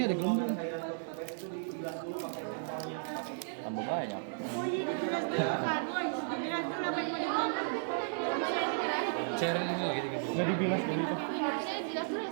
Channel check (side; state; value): left; silent; digital silence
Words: ada gelembung. Tambah banyak. Sharing ini lagi gitu. Nggak dibilas dulu itu.